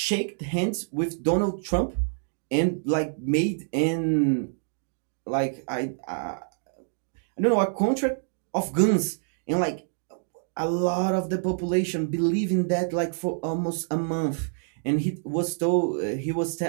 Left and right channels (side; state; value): left; silent; digital silence